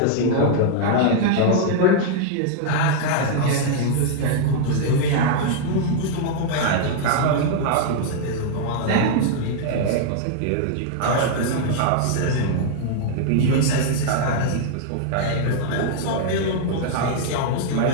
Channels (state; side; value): different; both; correlation -0.01